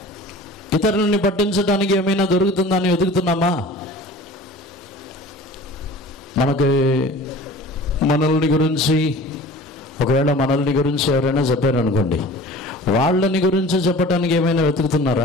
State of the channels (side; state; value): both; normal; correlation 0.41